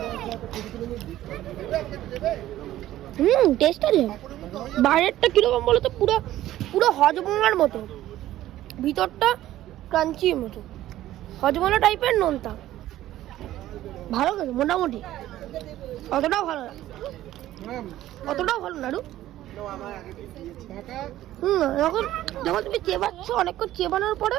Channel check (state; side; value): quieter; left; 14.1 dB